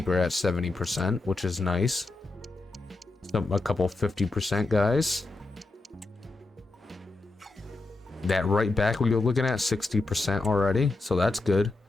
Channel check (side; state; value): right; quieter; 3.2 dB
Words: at 70%, which is nice. So a couple 50% guys. That right back we were looking at 60% already, so that's good.